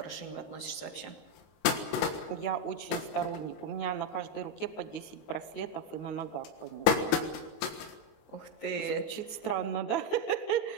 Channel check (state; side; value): late; right; 19 ms